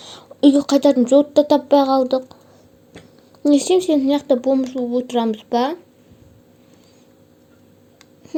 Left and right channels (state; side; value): identical; both; correlation 1.00